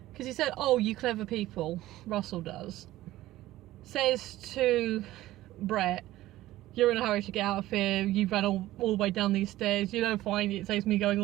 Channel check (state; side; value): quieter; left; 15.8 dB